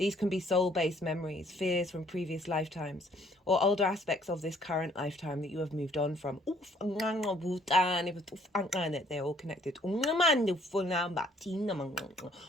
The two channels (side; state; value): both; normal; correlation 0.62